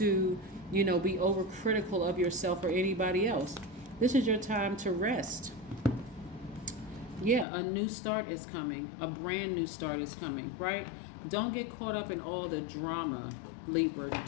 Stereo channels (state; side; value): drops out; right; at 7.5 s